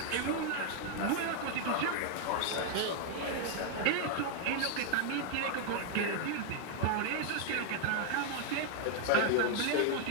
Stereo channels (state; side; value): different; both; correlation 0.00